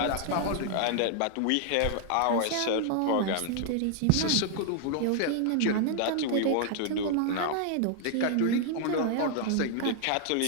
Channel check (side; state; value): both; different; correlation 0.00